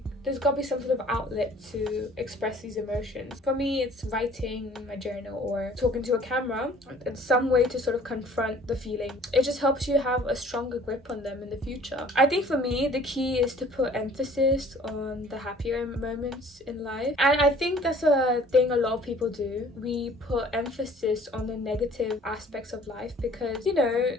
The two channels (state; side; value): normal; both; correlation 0.53